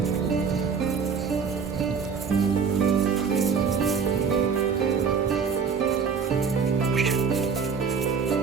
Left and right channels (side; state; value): left; quieter; 5.9 dB